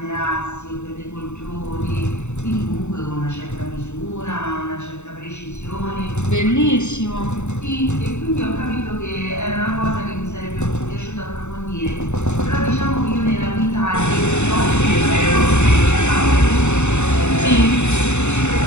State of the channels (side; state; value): right; late; 0.82 ms